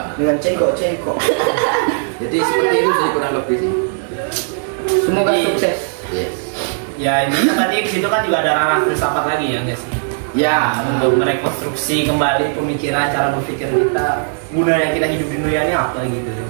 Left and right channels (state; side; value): silent; left; 65 dB below the other